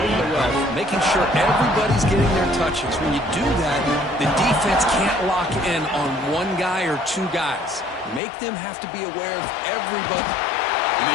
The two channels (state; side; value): drops out; right; at 8.2 s